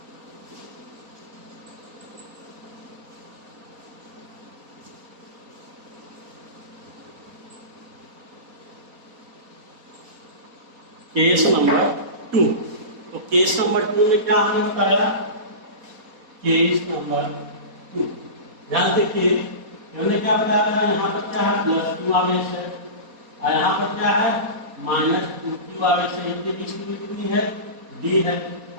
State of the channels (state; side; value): late; left; 4.1 ms